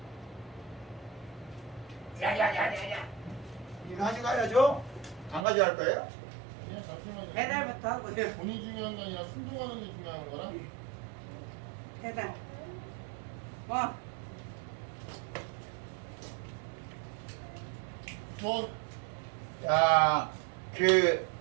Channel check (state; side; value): drops out; left; at 5.5 s